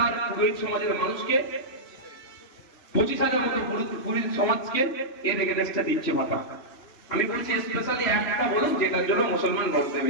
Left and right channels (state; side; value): late; right; 3.1 ms